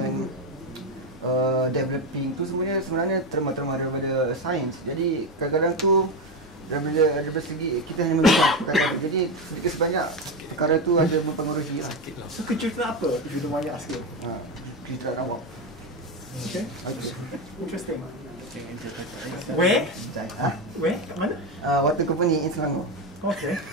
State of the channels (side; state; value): both; normal; correlation 0.12